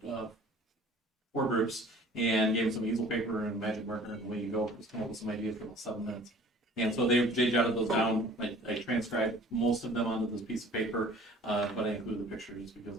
4 groups and gave them some easel paper and magic marker, and away you go, just come up with some ideas for about 7 minutes. And so they jotted those down. I transcribed most of them onto this piece of paper, but I included the pictures because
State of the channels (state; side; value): normal; both; correlation 0.50